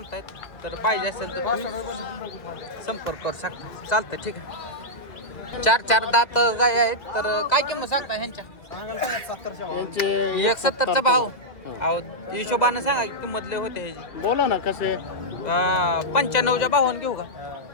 तर पाहिजे असेल तर तुम्ही संपर्क करू शकता. चालतं ठीक आहे. 4 दात गाय आहेत. तर काय किंमत सांगता ह्यांच्या? 170चा भाव. अहो हिशोबानं सांगा किंमत लय होते ह्याची. बोला ना कसे? 95च्या भावानं घेऊ का?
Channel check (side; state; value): right; late; 1.9 ms